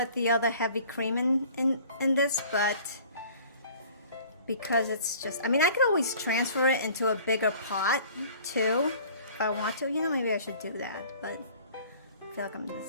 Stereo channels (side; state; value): both; inverted; correlation -0.49